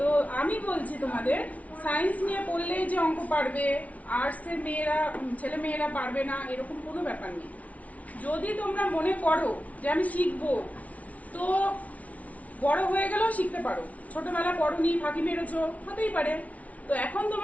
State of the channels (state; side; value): late; right; 0.068 ms